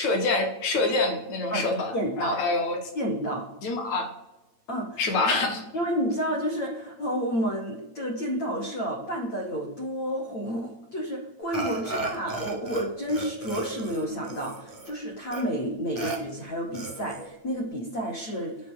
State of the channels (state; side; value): late; right; 8.9 ms